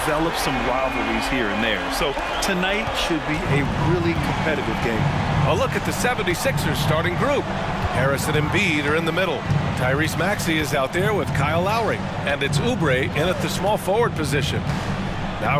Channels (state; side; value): identical; both; correlation 1.00